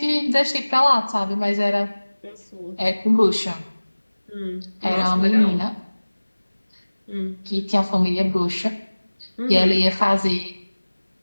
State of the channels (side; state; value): both; inverted; correlation -1.00